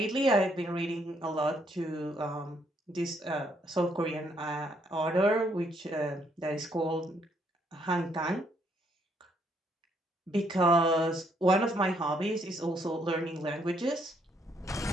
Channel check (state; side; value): normal; both; correlation 0.71